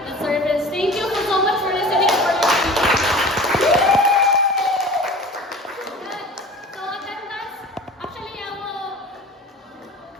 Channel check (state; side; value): normal; both; correlation 0.39